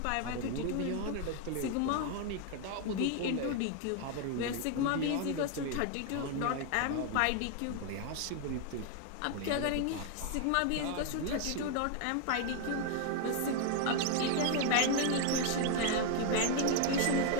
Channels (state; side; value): different; both; correlation 0.01